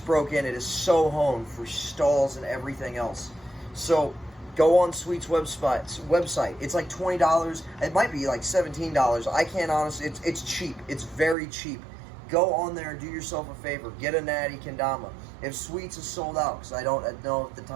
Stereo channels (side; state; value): left; drops out; at 11.4 s